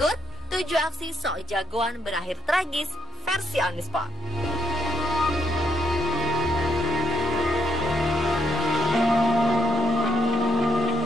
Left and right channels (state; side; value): normal; both; correlation 0.74